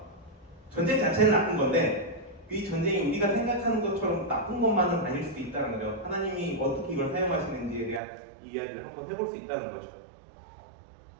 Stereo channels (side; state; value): left; drops out; at 8.0 s